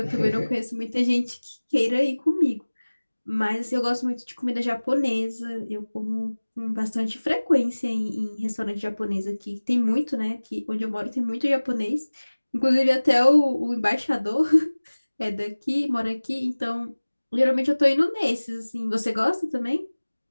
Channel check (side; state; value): both; inverted; correlation -1.00